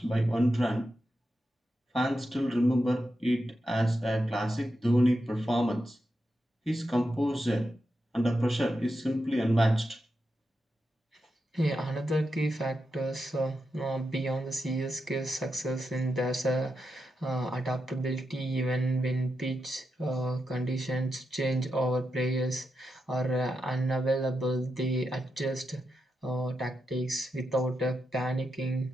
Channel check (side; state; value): both; normal; correlation 0.87